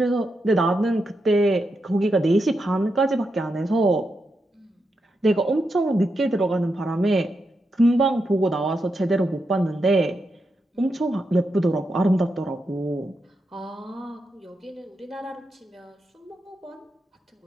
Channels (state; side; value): normal; both; correlation 0.85